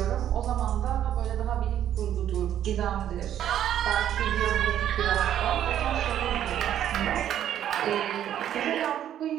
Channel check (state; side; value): quieter; left; 10.7 dB